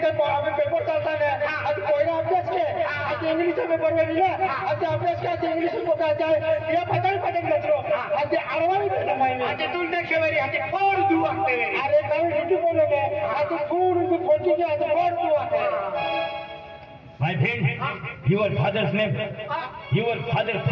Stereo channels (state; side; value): identical; both; correlation 1.00